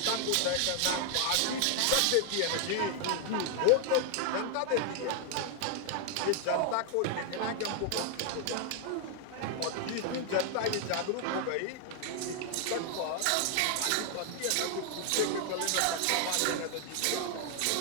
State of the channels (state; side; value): different; both; correlation 0.00